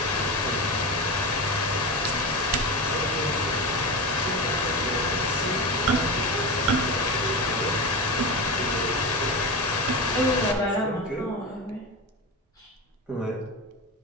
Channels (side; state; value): both; normal; correlation 0.22